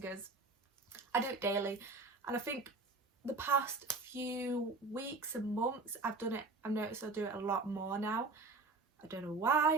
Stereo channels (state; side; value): quieter; left; 3.6 dB